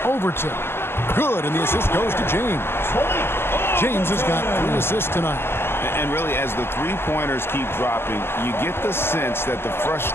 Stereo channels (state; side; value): late; right; 0.12 ms